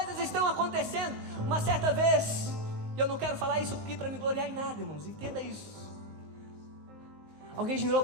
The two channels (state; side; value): late; left; 19 ms